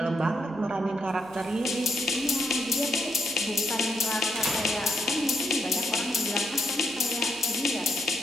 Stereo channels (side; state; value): right; noise; hum, 25 dB below the sound